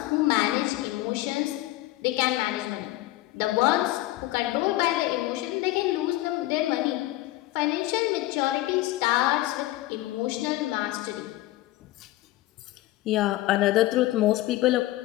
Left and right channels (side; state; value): right; quieter; 16.9 dB